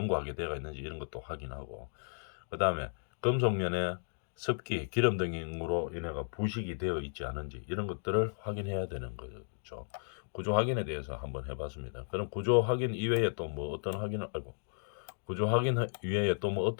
되어 있는지 이런 것도 확인하고, 그 다음에 금속면에 습기, 기름 등으로 인해가 부식이 되어 있지 않은지 이런 것들을 확인해야 되는 거죠. 구조 확인에 대해서 한번 해봤습니다. 그럼 구조 확인 이외에 또 뭐 어떤 확인을 알고, 구조 확인 이외에 또 뭐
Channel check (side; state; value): right; silent; digital silence